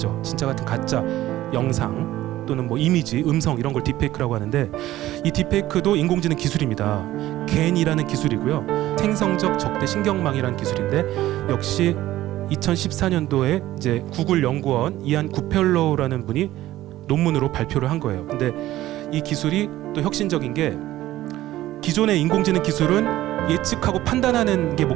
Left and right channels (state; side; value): quieter; left; 15.0 dB